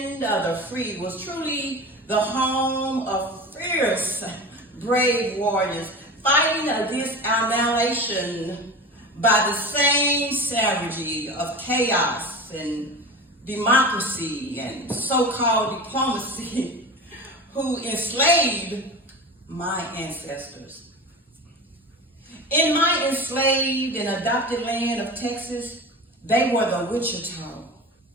of the free was truly the home of fierce, brave warriors fighting against annihilation by the same savagery of chaos and democracy and so-called diplomacy who enslaved my ancestors. In my enslaved and adopted land of Texas, they were the Wichita,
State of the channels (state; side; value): normal; both; correlation 0.30